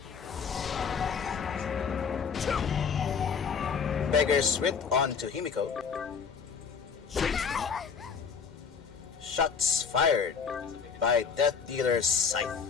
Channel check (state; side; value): quieter; right; 6.1 dB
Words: Beggar's Wit onto Himiko. Shots fired by Death Dealer's Scythe.